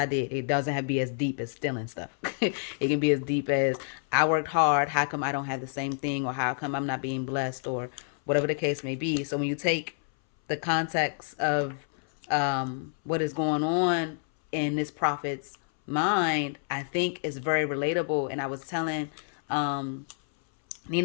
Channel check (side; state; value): right; silent; 59 dB below the other